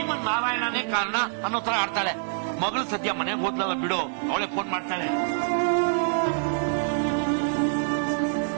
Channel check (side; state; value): left; silent; 61 dB below the other